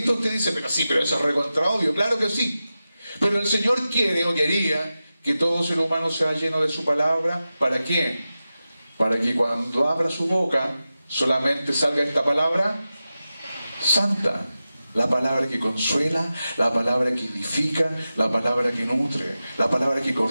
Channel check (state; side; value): inverted; both; correlation -0.93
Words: usted dice, pero sí, pero eso es recontra obvio. Claro que sí. Pero el Señor quiere o quería que todo ser humano sea lleno de su palabra. ¿Para qué? Para que cuando abra su boca solamente salga esta palabra santa, la palabra que consuela, la palabra que edifica, la palabra que nutre, la palabra que